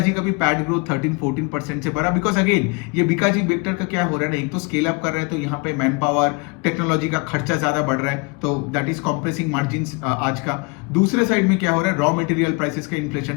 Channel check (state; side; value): quieter; right; 30.7 dB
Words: का भी पैड ग्रोथ 13-14% से बढ़ा, बिकॉज अगेन ये बिकाजी बेक्टर का क्या हो रहा है ना, एक तो स्केल अप कर रहा है तो यहाँ पे मैन पावर, टेक्नोलॉजी का खर्चा ज्यादा बढ़ रहा है, तो दैट इज कॉम्प्रेसिंग मार्जिन आज का। दूसरे साइड में क्या हो रहा है, रॉ मटेरियल प्राइसेस का